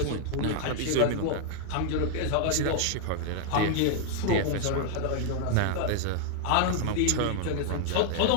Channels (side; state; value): both; different; correlation 0.00